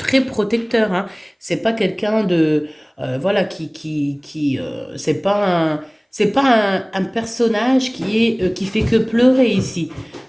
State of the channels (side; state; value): both; identical; correlation 1.00